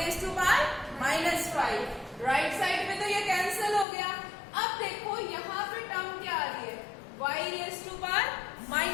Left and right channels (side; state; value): right; drops out; at 3.9 s